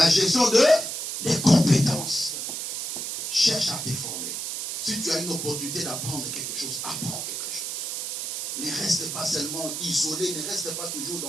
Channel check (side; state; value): right; noise; hiss, 4 dB below the sound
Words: gestion des compétences. Cherche à te former. Si tu as une opportunité d'apprendre quelque chose, apprends quelque chose. Ne reste pas seulement isolé, ne reste pas toujours